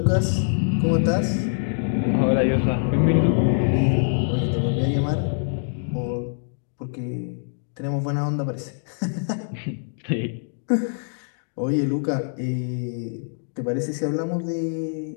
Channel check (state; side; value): silent; right; digital silence